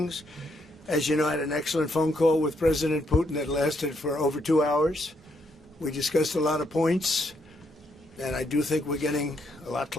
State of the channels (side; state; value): both; normal; correlation 0.75